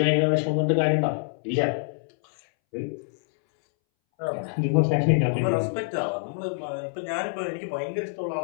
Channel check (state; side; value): silent; right; 61 dB below the other